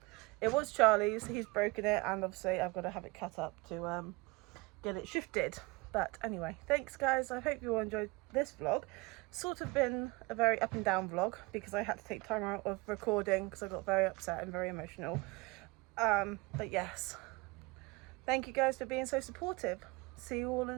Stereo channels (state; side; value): quieter; left; 24.6 dB